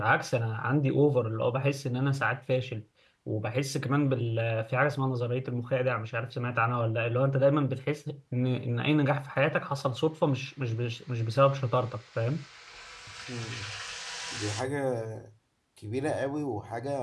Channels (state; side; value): identical; both; correlation 1.00